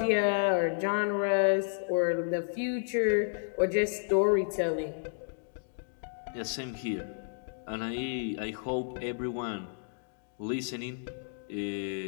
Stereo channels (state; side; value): silent; right; digital silence